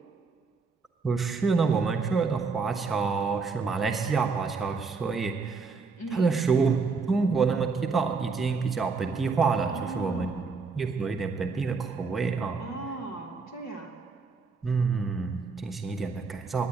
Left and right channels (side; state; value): left; quieter; 4.6 dB